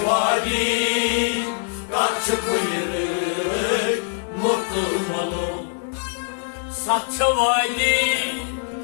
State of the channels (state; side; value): silent; right; digital silence